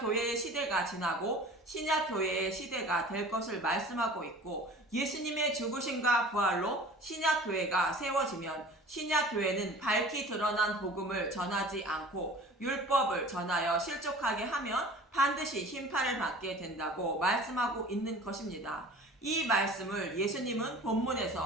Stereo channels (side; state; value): both; normal; correlation 0.43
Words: 시대가 지나고 신약교회의 시대가 될 것을 말씀하고 있고 예수님의 죽으심과 부활로 신약교회가 세워지면 신약교회는 밝히 드러난 복음을 전하지 않고 율법을 전하여 실족하게 하면 반드시 심판을 받게 된다고 말씀하고 있는 것입니다. 이 말씀을 예수님은